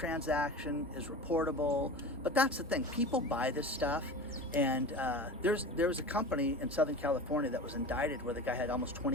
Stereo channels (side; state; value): both; normal; correlation 0.32